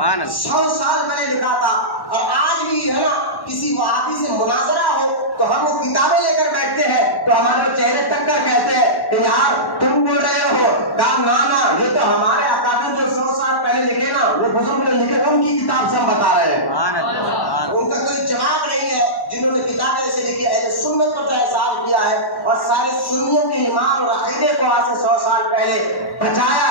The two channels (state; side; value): late; right; 1.1 ms